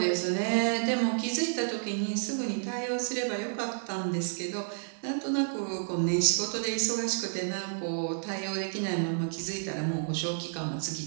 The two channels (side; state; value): left; silent; digital silence